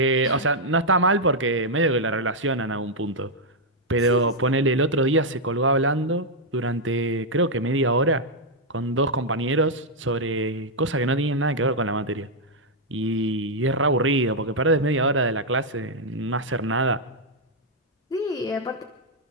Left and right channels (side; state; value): both; normal; correlation -0.03